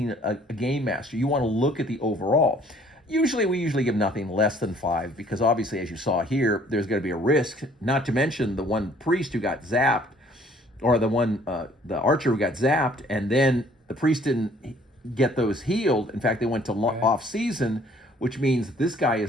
a game master. You want to look at the overall. We usually give nothing less than 5, because obviously, as you saw here, there's going to be a risk, not to mention the one priest who got zapped, or the archer who got zapped, and then the priest didn't get those healed. In fact, they went to off season, which means this guy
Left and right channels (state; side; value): normal; both; correlation 0.58